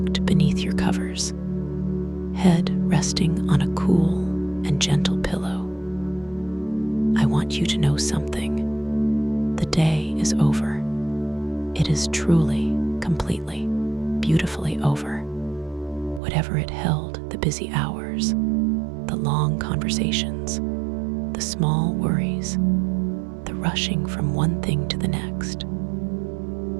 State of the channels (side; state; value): left; drops out; at 16.2 s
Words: beneath your covers, head resting on a cool and gentle pillow. I want you to know something. The day is over. It is truly, completely, beautifully over. Whatever it held, the busy hours, the long conversations, the small worries, the rushing from one thing to the next,